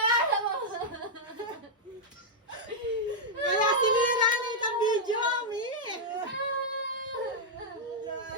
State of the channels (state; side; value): normal; both; correlation -0.05